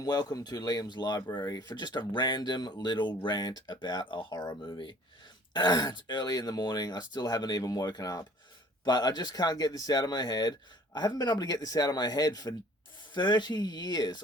welcome to Liam's Library for just a random little rant about a horror movie. It's early in the morning, I still haven't even woken up, but I just can't get this out of my head. I haven't been able to get this out of my head for 30 years.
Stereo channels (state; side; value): normal; both; correlation 0.53